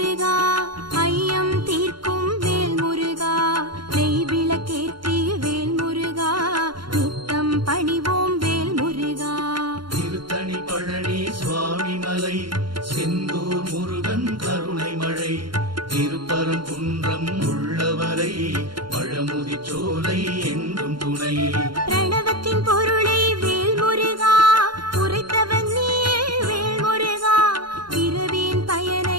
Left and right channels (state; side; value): late; left; 0.72 ms